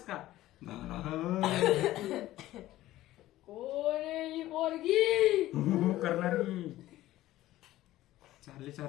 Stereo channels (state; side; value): quieter; right; 15.4 dB